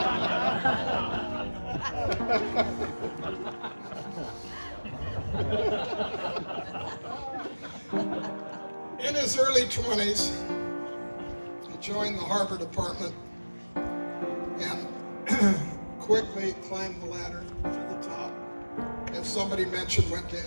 In his early 20s, he joined the harbor department and quickly climbed the ladder to the top. As somebody mentioned, went to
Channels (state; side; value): inverted; both; correlation -1.00